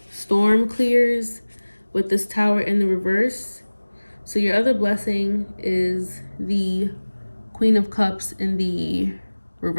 storm clears with this Tower in the reverse, So your other blessing is the Queen of Cups in the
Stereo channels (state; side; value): inverted; both; correlation -1.00